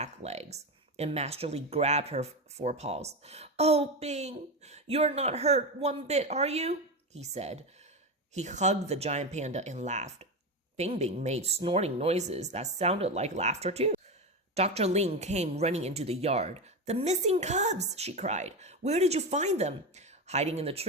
legs, and Master Li grabbed her forepaws. Oh, Bing, you're not hurt one bit, are you? He said. He hugged the giant panda and laughed. Bing Bing made snorting noises that sounded like laughter too. Dr. Ling came running into the yard. The missing cubs, she cried. Where did you find them? Hiding in the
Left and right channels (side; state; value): both; normal; correlation 0.17